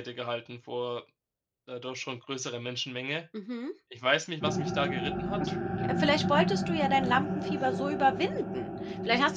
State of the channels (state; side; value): identical; both; correlation 1.00